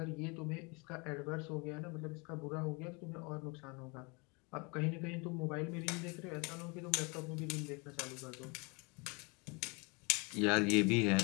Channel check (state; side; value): quieter; right; 30.0 dB